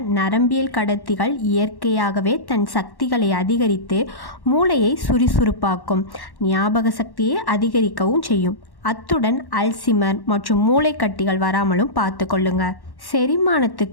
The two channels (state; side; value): late; right; 1.1 ms